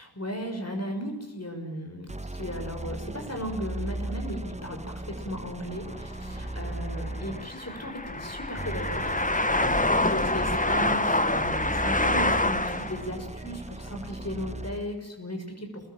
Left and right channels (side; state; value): both; normal; correlation -0.07